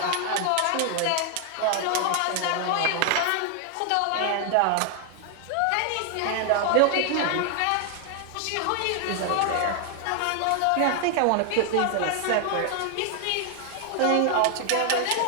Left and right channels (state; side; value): different; both; correlation 0.00